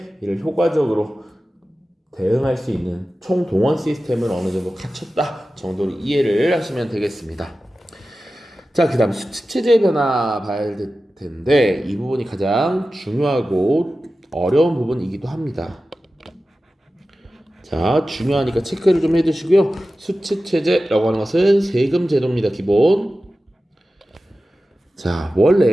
이를 효과적으로 대응할 수 있는 총동원 시스템을 어느 정도 갖췄다 정도로 이해를 하시면 되겠습니다. 자, 그 다음 수치체제 변화 봐야 될 텐데 이 부분이 가장 중요하고 어려운 부분이기도 합니다. 자, 중요하니까 체크를 좀 해두시고요. 수치체제라고 하는 것은 세금 제도입니다. 기본. 자,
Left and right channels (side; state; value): both; normal; correlation 0.94